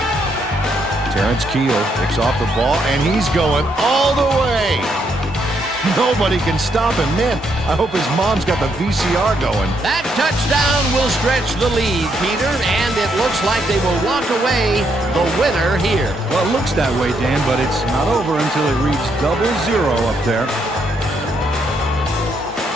Terrence Keel picks off the ball, and he's going all the way. Nobody can stop him. Man, I hope his mom's got the VCR going. That touchdown will stretch the lead, Peter, and it looks like they will walk away the winner here. Well, it looks that way, Dan, but it's not over until it reads 0-0 up there.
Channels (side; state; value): both; normal; correlation 0.76